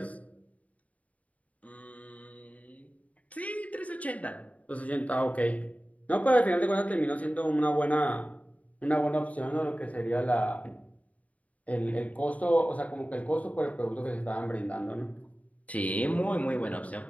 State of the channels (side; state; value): right; late; 0.069 ms